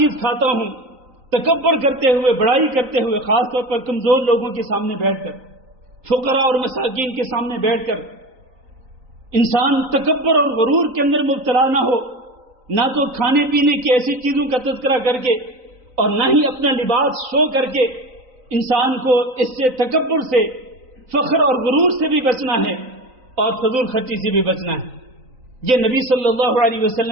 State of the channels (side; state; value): left; late; 3.9 ms